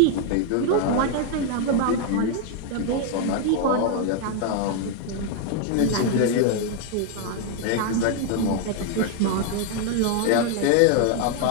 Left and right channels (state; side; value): different; both; correlation 0.00